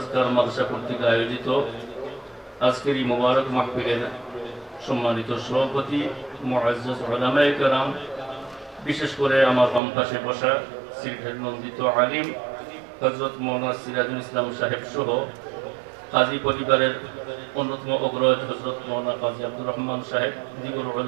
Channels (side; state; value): left; drops out; at 9.8 s